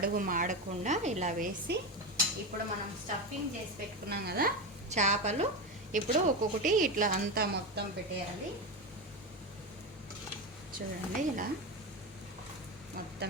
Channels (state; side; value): normal; both; correlation 0.17